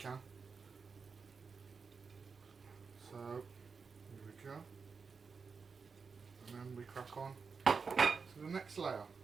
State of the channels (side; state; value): left; quieter; 5.2 dB